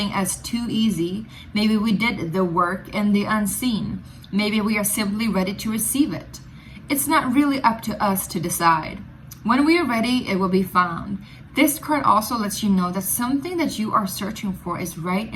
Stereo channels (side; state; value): both; identical; correlation 1.00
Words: as too easy. Maybe we did the work in the unseen. Maybe we are simply ready to receive it. It's not really up to us to decide. When we are ready, it will be found. This card also lets you know that something that you are searching for is right